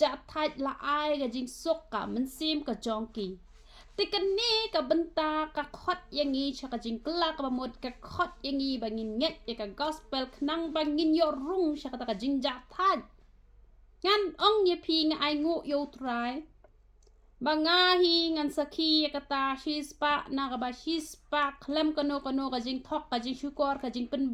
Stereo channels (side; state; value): both; identical; correlation 1.00